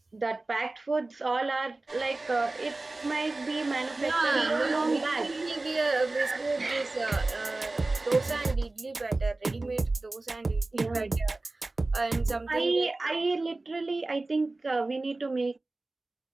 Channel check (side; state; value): left; quieter; 3.1 dB